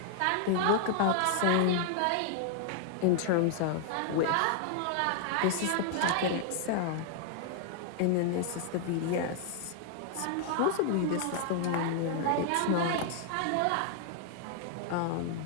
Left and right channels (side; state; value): both; different; correlation 0.00